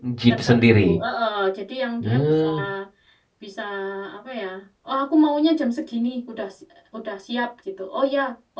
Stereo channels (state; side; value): identical; both; correlation 1.00